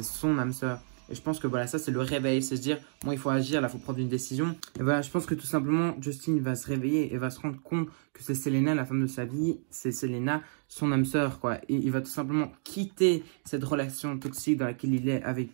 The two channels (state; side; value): silent; left; digital silence